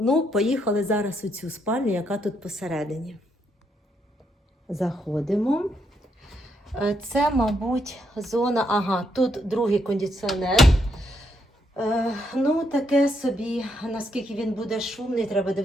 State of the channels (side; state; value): both; normal; correlation 0.77